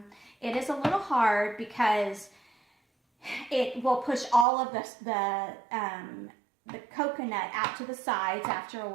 It is a little hard because it will push all of the coconut out to the sides after a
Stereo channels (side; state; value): left; drops out; at 4.5 s